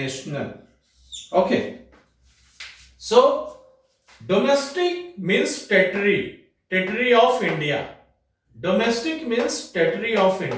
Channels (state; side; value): identical; both; correlation 1.00